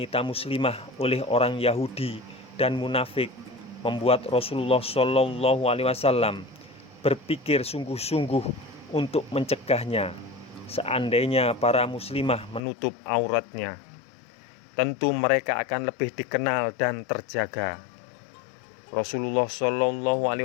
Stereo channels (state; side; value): drops out; right; at 12.6 s